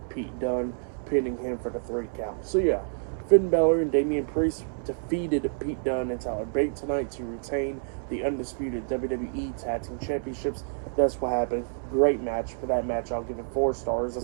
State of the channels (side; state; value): left; silent; digital silence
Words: Pete Dunne, pinning him for the 3 count. So yeah, Finn Balor and Damian Priest defeated Pete Dunne and Tyler Bate tonight to retain the undisputed WWE Tag Team Championships. That's what happened. Great match. For that match, I'll give it 4 stars.